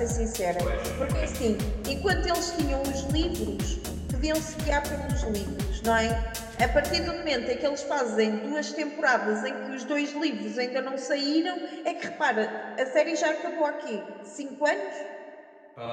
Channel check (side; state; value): both; identical; correlation 1.00